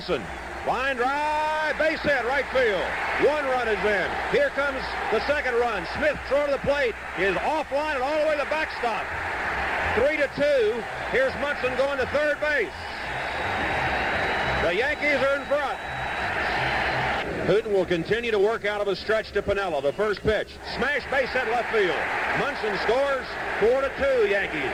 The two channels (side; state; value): both; identical; correlation 1.00